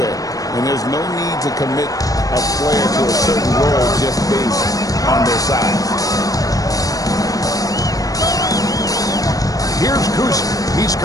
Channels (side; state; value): right; late; 0.17 ms